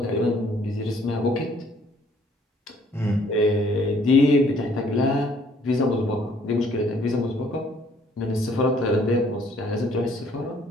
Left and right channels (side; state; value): both; normal; correlation 0.62